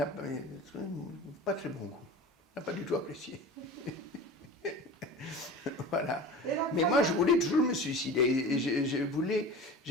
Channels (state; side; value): normal; both; correlation 0.35